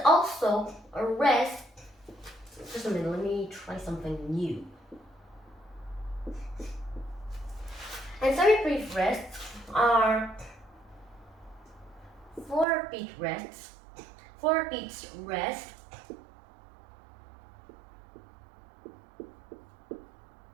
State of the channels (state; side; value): drops out; left; at 12.7 s